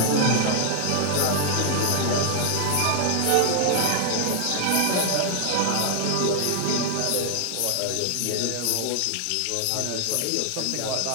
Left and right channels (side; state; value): both; different; correlation 0.00